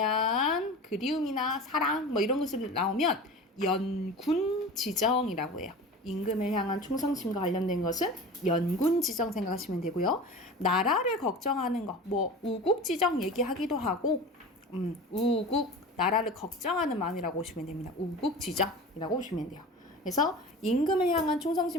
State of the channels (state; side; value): normal; both; correlation 0.34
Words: 그리움이나 사랑 이런 것을 나오면 연군지정이라고 해요. 임금을 향한 충성심과 관련된 것은 연군지정 생각하시면 되고요. 나라를 걱정하는 거, 우국지정 얘기하기도 하고 우국, 나라를 걱정하는 마음이라고 보시면 됩니다. 우국지정이라고 보시면 돼요. 그래서 임금을 향한